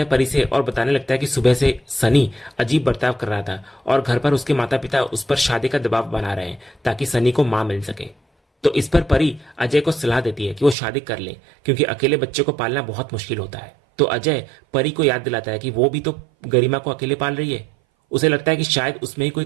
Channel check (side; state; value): left; drops out; at 10.8 s